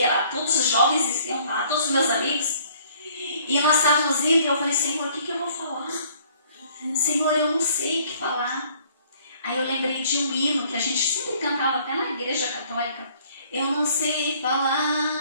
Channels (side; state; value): both; inverted; correlation -0.59